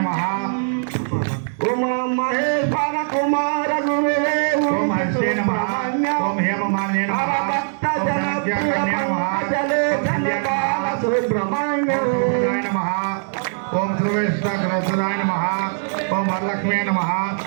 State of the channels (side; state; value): left; silent; 65 dB below the other